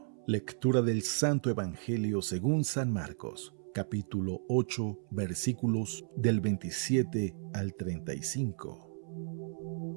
Lectura del Santo Evangelio según San Marcos, capítulo 8, versículos del 27 al 35.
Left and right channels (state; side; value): silent; left; 55 dB below the other